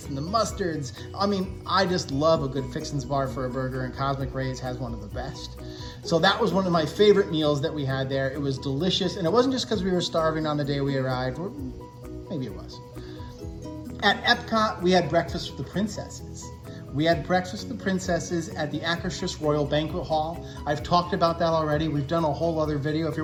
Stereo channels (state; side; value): identical; both; correlation 1.00